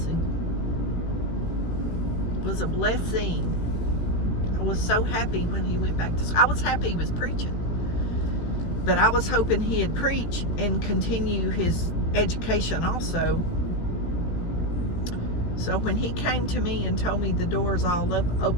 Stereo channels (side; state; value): right; late; 17 ms